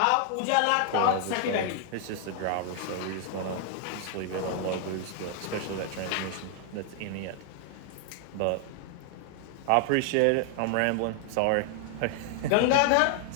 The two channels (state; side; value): different; both; correlation 0.00